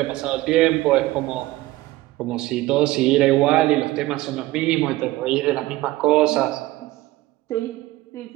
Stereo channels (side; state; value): left; quieter; 17.9 dB